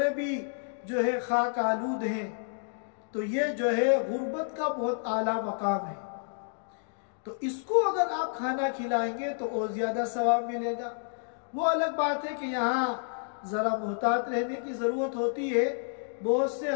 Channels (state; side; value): silent; right; digital silence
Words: भी जो है खाक आलूद हैं। तो ये जो है गुर्बत का बहुत आला मकाम है। तो इसको अगर आप खाना खिलाएंगे तो और ज्यादा सवाब मिलेगा। वो अलग बात है कि यहाँ जरा मुहतात रहने की जरूरत होती है। बहुत से